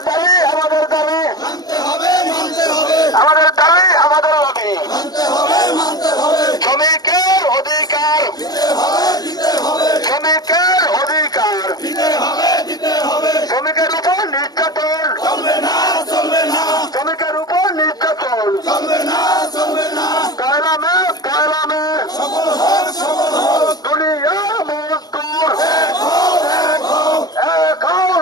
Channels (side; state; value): right; late; 0.19 ms